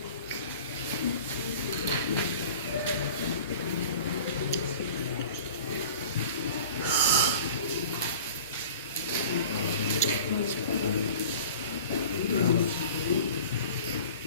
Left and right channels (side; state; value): both; inverted; correlation -0.43